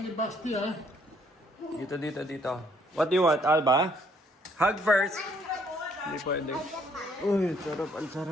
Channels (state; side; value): normal; both; correlation 0.66